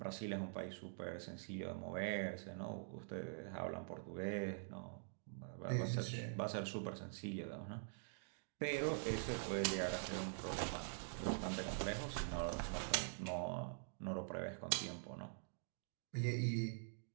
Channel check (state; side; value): silent; left; digital silence